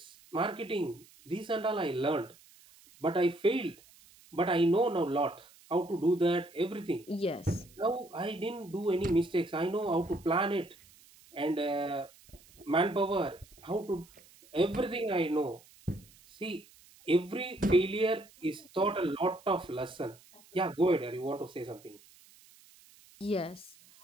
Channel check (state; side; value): noise; right; hiss, 26 dB below the sound